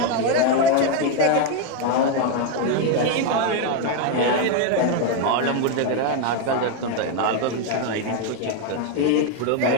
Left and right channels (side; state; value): both; different; correlation 0.01